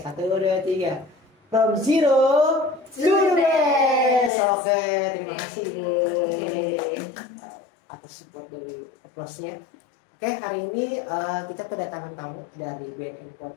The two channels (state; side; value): drops out; right; at 4.3 s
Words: 2, 3. From zero to the best. Oke, terima kasih, Bu, atas support dari applause-nya. Oke, hari ini kita kedatangan tamu dari BNN